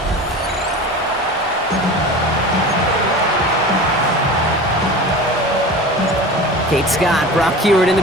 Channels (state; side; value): normal; both; correlation 0.34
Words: Kate Scott, Brock Hewitt in the